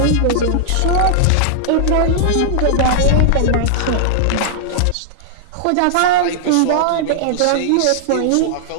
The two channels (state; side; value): different; both; correlation -0.01